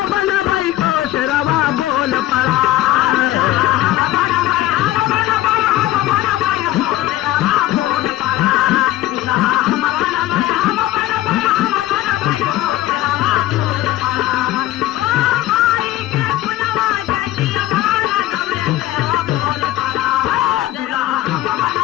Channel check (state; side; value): quieter; right; 14.8 dB